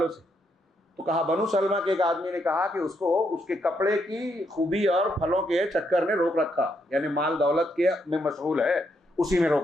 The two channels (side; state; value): both; normal; correlation 0.77